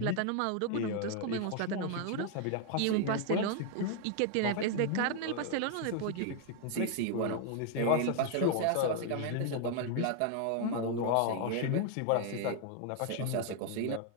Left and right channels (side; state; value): both; different; correlation 0.00